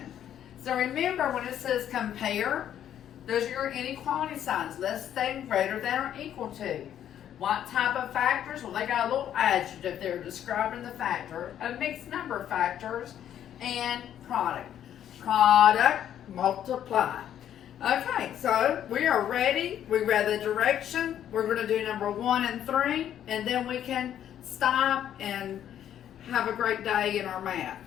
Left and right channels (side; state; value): right; quieter; 10.4 dB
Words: So remember when it says compare, those are your inequality signs, less than, greater than, or equal to. What type of factors? Well, they got a little adjective there describing the factor of mixed number factors and product. Product, multiply. Okay, so we are ready. We read the direction. We're going to do number 1 and 3, and then we can stop and have a great day in our math,